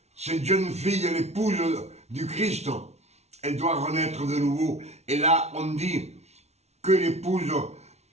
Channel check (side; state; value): left; late; 0.31 ms